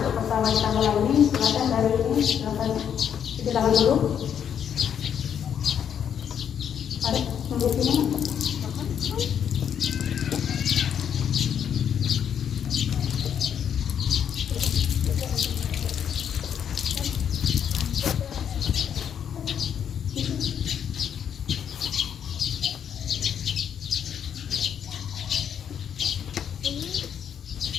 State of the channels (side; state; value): right; quieter; 8.5 dB